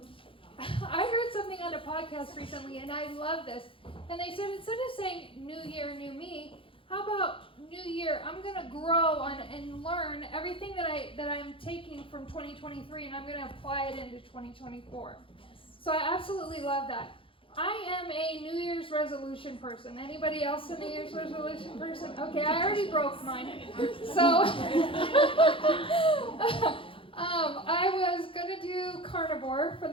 I heard something on a podcast recently, and I love this. And they said, instead of saying new year, new me, how about new year, I'm going to grow on and learn everything that I'm taking from 2023, and I'm going to apply it into 2024. So I absolutely love that. I am a New Year's resolution person. Anybody else a New Year's resolution person? Okay, I already broke mine. So I was going to do carnivore for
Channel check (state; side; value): late; right; 0.26 ms